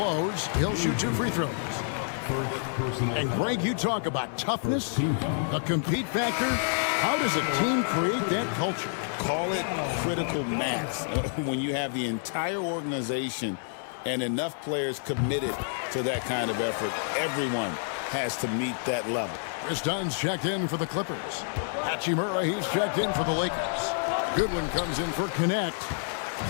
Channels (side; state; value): right; silent; digital silence